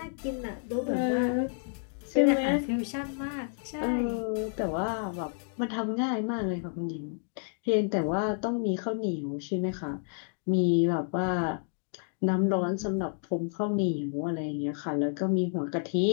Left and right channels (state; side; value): silent; right; 58 dB below the other